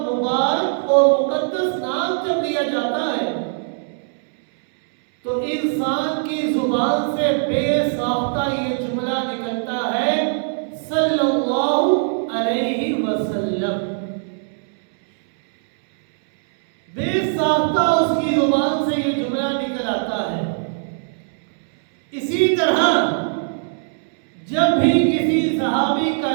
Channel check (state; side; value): silent; left; 65 dB below the other